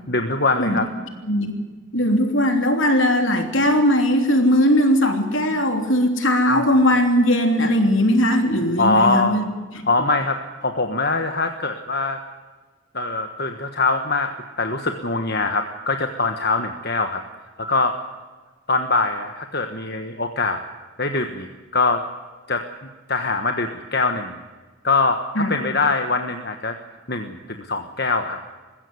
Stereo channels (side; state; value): both; normal; correlation 0.11